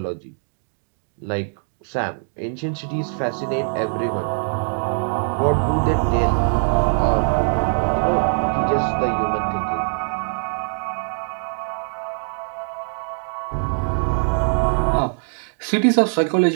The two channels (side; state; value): left; silent; digital silence